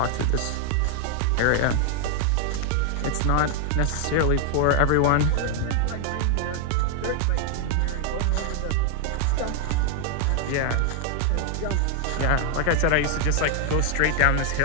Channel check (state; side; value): different; both; correlation 0.00